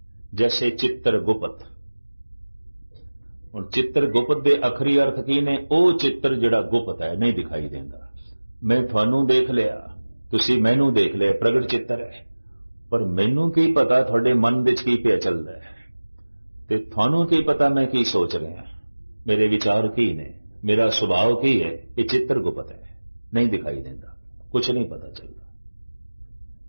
जैसे चित्रगुप्त। हुण चित्रगुप्त दे अखरी अर्थ की ने? वो चित्र जिहड़ा गुप्त है, नहीं दिखाई देंदा। मैं थानू देख लिया, तुसी मैनू देख लिया, प्रगट चित्र है, पर मैनू की पता थोड़े मन विच की पिया चलदा है, ते थानू की पता मैं की सोच रहा, मेरे विचार की ने, मेरा स्वभाव की है। ये चित्रगुप्त है, नहीं दिखाई देता, कुछ नहीं पता चलता।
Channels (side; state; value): both; inverted; correlation -1.00